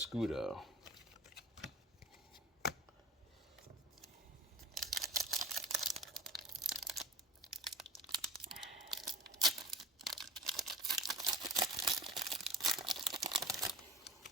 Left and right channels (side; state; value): both; normal; correlation 0.38